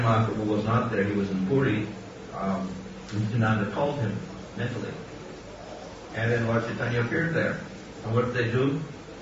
Mahaprabhu was not there, he was in Puri, Nityananda called him mentally. And then Lord Chaitanya appeared there. And what did they do?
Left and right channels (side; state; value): both; identical; correlation 1.00